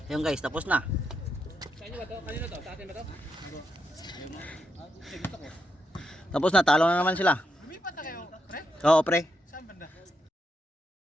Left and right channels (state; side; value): normal; both; correlation 0.82